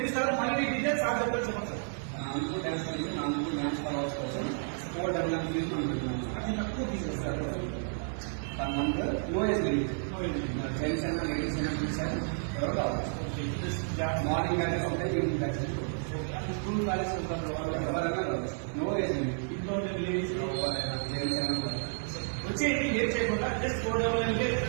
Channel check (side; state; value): left; silent; digital silence